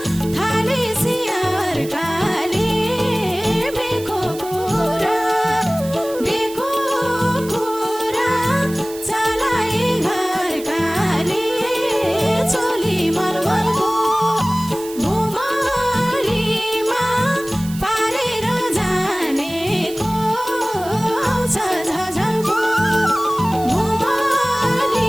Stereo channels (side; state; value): right; noise; hiss, 16 dB below the sound